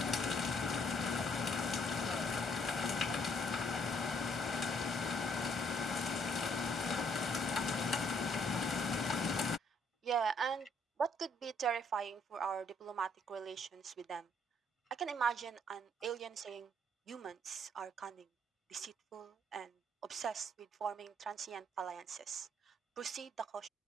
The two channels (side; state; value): both; normal; correlation 0.68